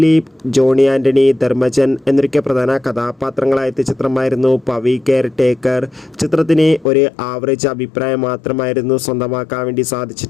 ജോണി ആൻ്റണി, ധർമ്മജൻ എന്നൊക്കെ പ്രധാന കഥാപാത്രങ്ങളായ ചിത്രമായിരുന്നു പവി കെയർ ടേക്കർ. ചിത്രത്തിന് ഒരു ആവറേജ് അഭിപ്രായം മാത്രമായിരുന്നു സ്വന്തമാക്കാൻ വേണ്ടി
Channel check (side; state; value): right; drops out; at 6.9 s